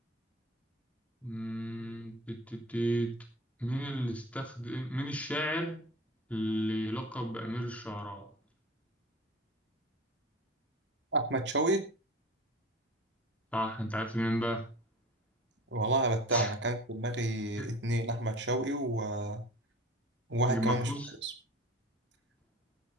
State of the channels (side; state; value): both; normal; correlation 0.37